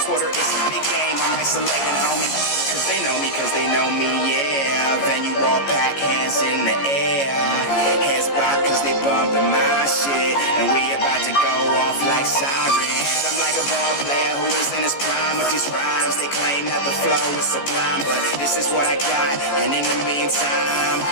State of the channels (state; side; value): late; right; 14 ms